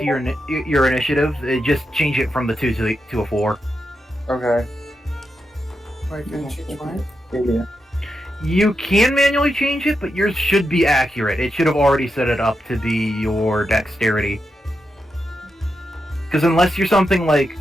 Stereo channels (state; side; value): normal; both; correlation 0.86